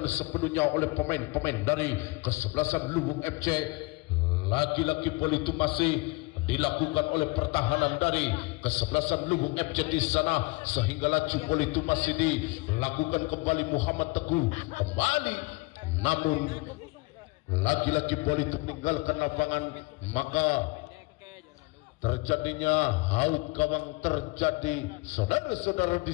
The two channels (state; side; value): quieter; right; 25.4 dB